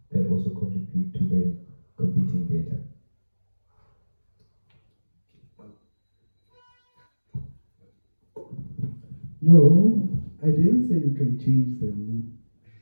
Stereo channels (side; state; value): both; inverted; correlation -1.00